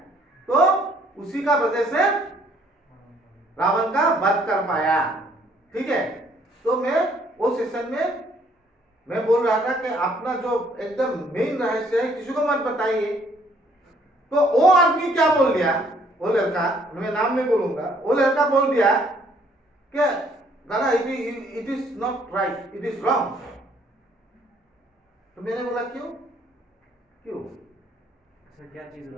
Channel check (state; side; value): normal; both; correlation 0.64